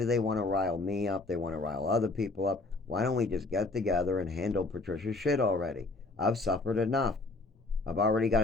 they want to rile me up? They want to rile other people up. Why don't we just get together and handle Patricia's shit already? I've suffered enough. I've already got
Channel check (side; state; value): right; quieter; 3.3 dB